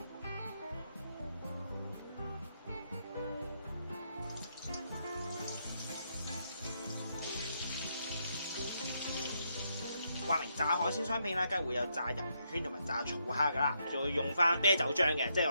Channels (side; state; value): both; inverted; correlation -0.78